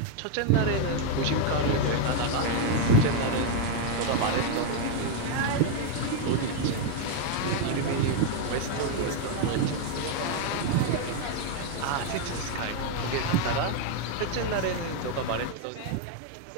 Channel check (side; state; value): both; different; correlation 0.01